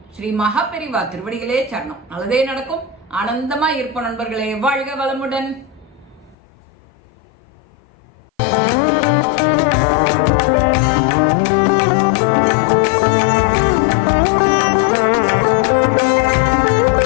ஸ்ரீ மகாபெரிவா திருவடிகளே சரணம். நல்லதே நடக்கும். ஆனந்தமா இருப்போம் நண்பர்களே. வாழ்க வளமுடன்.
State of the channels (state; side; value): drops out; right; at 6.4 s